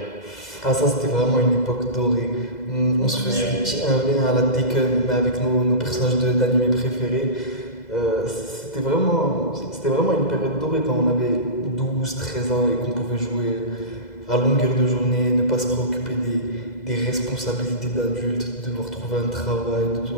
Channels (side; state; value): right; late; 2.0 ms